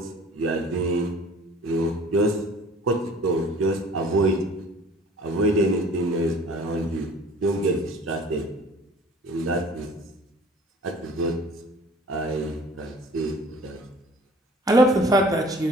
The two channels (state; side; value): normal; both; correlation 0.49